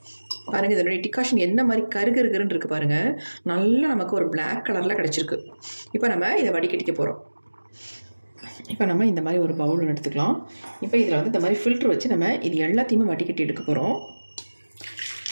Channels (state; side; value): inverted; both; correlation -1.00